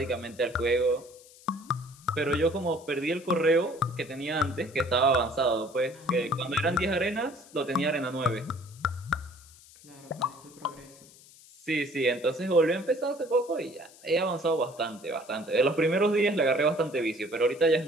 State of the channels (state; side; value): noise; left; hiss, 23 dB below the sound